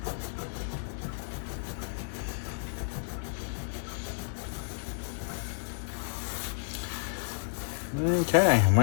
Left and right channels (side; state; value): right; silent; 57 dB below the other